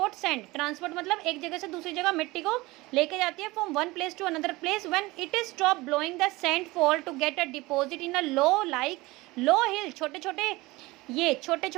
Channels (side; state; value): left; quieter; 21.2 dB